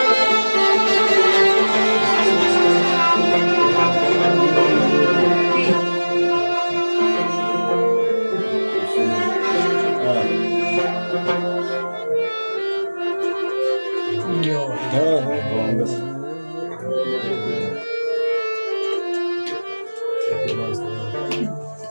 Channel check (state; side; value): inverted; both; correlation -1.00